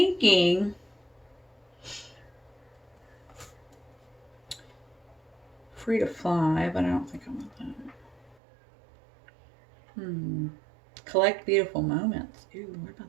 free to fly, but I don't think I want that. Collect beautiful moments. Ooh, what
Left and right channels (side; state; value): left; drops out; at 8.3 s